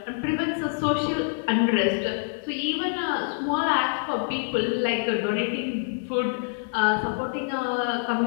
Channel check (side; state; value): right; silent; 61 dB below the other